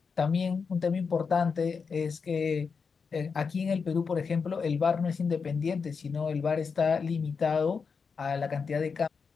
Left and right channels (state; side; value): quieter; right; 5.5 dB